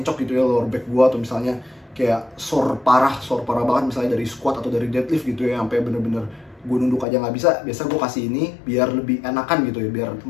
gitu ya lower back gue, atau misalnya kayak sore parah banget misalnya dari squat atau dari deadlift gitu ya, sampai bener-bener gue nunduk aja nggak bisa, biasa gue kasih ini biar lebih enakan gitu ya, biar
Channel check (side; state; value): right; drops out; at 7.1 s